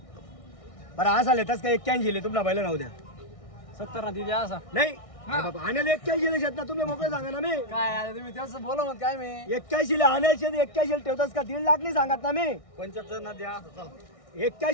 बरं असा लेताच काय 81 ले तुमला बैल राहू द्या 70 ना दिदी असा नाही आणायला 81 ले शेत ना तुम्ही मोकळे सांगा ना मी काय आता तुम्ही त्याचं बोला मग काय मी 81 ले आणायचे 81 ठेवतास का 1.5 लाख नाही सांगत ना मी 75 ना द्या चला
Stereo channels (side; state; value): right; late; 1.6 ms